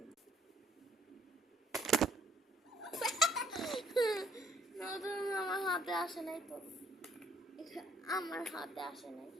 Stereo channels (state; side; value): normal; both; correlation 0.65